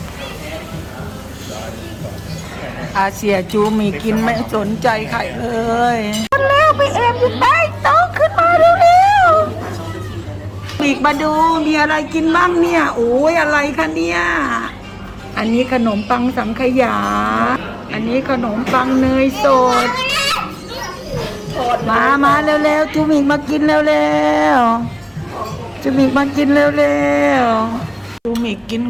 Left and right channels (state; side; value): identical; both; correlation 1.00